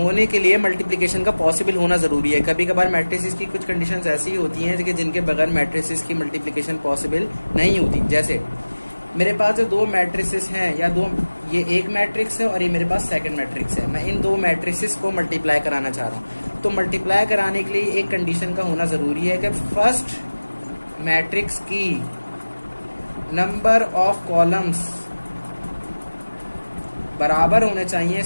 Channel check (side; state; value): both; inverted; correlation -1.00